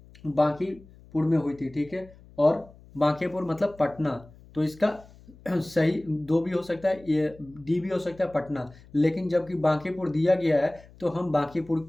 बांकीपुर में हुई थी। ठीक है, और बांकीपुर मतलब पटना, तो इसका सही दो भी हो सकता है, ये डी भी हो सकता है पटना, लेकिन जबकि बांकीपुर दिया गया है तो हम बांकीपुर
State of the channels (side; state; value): left; noise; hum, 23 dB below the sound